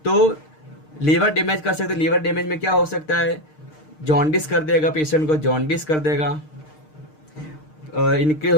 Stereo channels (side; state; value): right; late; 6.5 ms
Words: तो लीवर डैमेज कर सकते, लीवर डैमेज में क्या हो सकता है, जॉन्डिस कर देगा पेशेंट को, जॉन्डिस कर देगा,